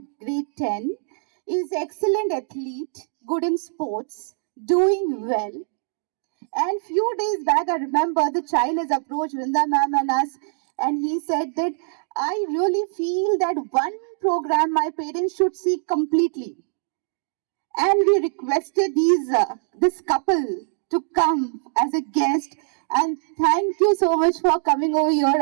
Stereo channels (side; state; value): left; silent; digital silence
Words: grade 10, is excellent athlete, good in sports, doing well. And few days back, I remember the child has approached Vrinda ma'am and us, and he said that I really feel that one program my parents should see completely. And we requested this couple to come as a guest. And thank you so much for coming over here.